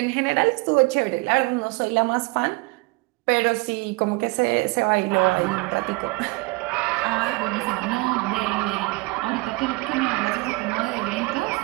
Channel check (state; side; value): quieter; left; 25.1 dB